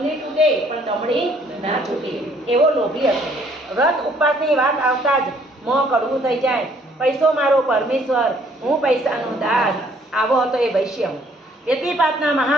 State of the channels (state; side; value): normal; both; correlation 0.63